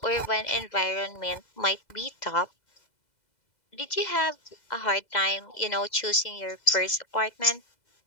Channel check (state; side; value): late; right; 2.0 ms